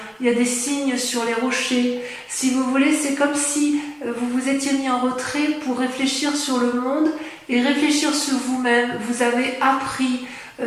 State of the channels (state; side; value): identical; both; correlation 1.00